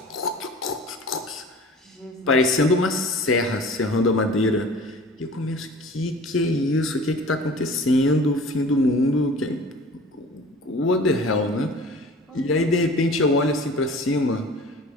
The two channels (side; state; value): both; normal; correlation 0.43